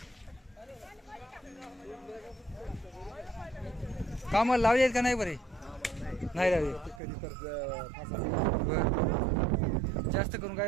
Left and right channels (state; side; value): drops out; left; at 7.0 s